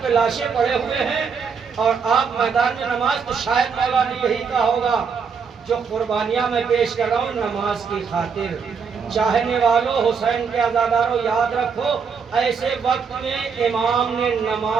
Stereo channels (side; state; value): left; quieter; 5.9 dB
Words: کے لاشیں پڑے ہوئے ہیں اور آپ میدان میں نماز، تو شاید مولا نے یہی کہا ہوگا جو قربانیاں میں پیش کر رہا ہوں نماز کی خاطر۔ چاہنے والوں، حسین کے عزاداروں، یاد رکھو ایسے وقت میں امام نے